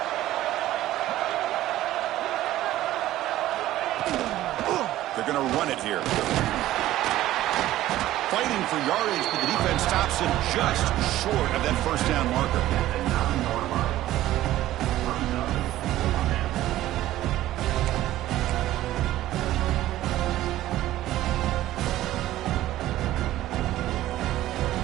They're going to run it here. Fighting for yardage, but the defense stops him just short of that first down marker.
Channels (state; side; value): quieter; left; 14.6 dB